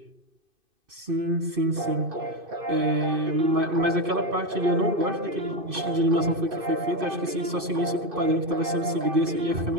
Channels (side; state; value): left; late; 2.6 ms